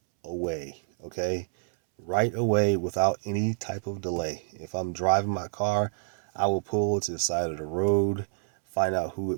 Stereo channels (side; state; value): left; silent; 60 dB below the other